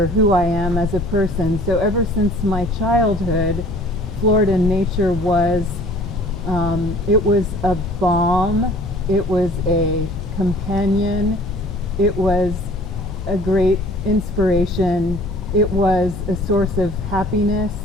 who I am as a person. So ever since my childhood, Florida nature was it was a balm, it was a companion, it was a great inspiration, it was a source of happiness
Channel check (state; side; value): normal; both; correlation 0.50